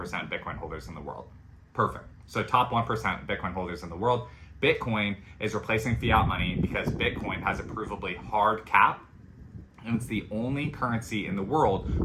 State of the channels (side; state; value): both; identical; correlation 1.00